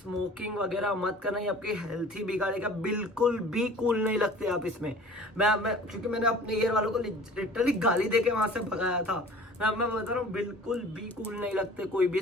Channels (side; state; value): both; normal; correlation 0.45